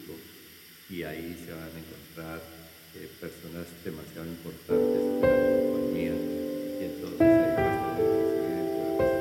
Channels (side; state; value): both; identical; correlation 1.00